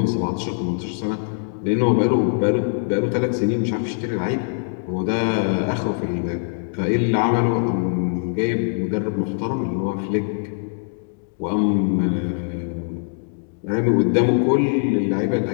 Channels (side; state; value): right; silent; digital silence